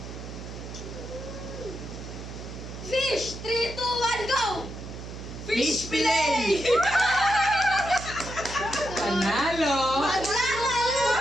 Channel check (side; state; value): right; noise; hum, 10 dB below the sound